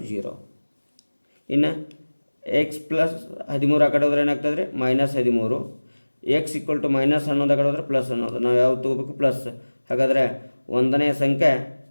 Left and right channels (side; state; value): both; inverted; correlation -1.00